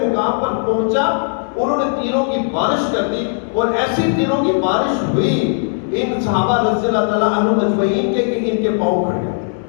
مقام پر پہنچا انہوں نے تیروں کی بارش کر دی. اور ایسی تیروں کی بارش ہوئی ان صحابہ رضی اللہ تعالیٰ عنہم اجمعین کے کہ ان کے پاؤں کھڑ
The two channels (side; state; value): right; silent; digital silence